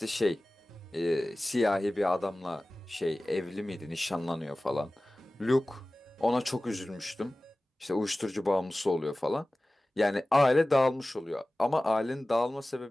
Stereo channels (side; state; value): both; normal; correlation 0.97